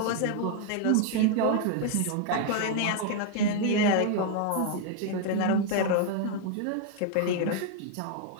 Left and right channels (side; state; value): both; different; correlation 0.00